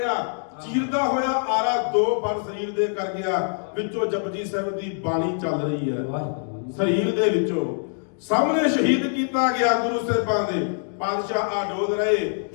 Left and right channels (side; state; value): right; silent; digital silence